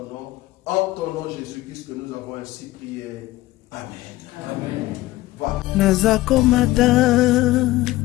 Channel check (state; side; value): quieter; right; 17.6 dB